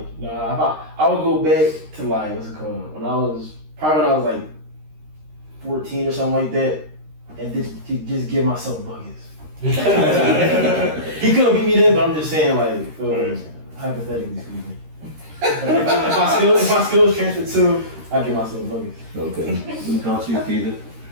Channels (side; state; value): left; late; 13 ms